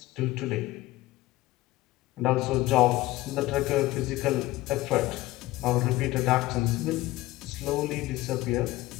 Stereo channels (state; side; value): quieter; right; 17.8 dB